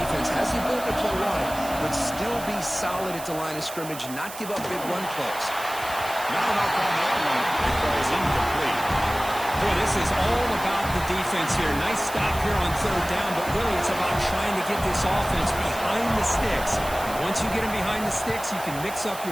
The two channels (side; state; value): right; noise; hiss, 13 dB below the sound